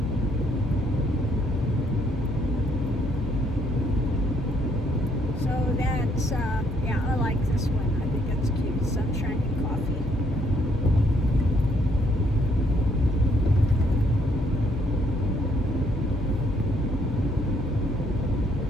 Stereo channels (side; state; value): both; normal; correlation 0.69